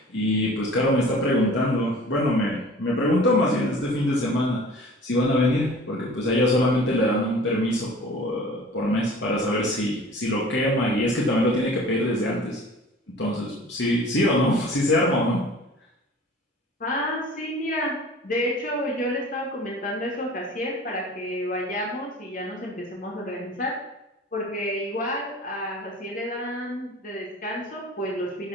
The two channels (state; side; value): normal; both; correlation 0.44